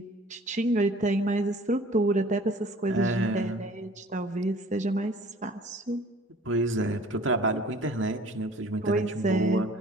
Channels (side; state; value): both; normal; correlation 0.50